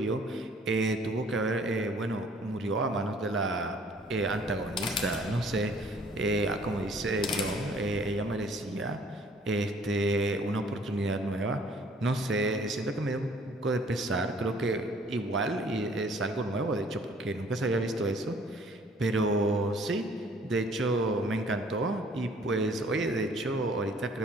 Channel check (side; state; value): both; normal; correlation 0.57